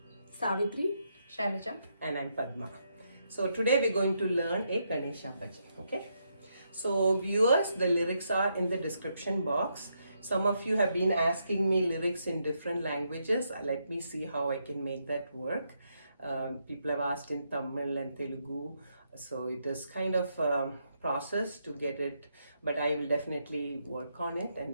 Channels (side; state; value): both; inverted; correlation -0.79